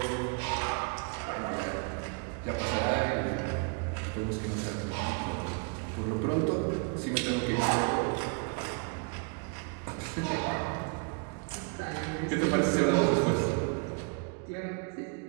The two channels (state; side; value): quieter; left; 35.3 dB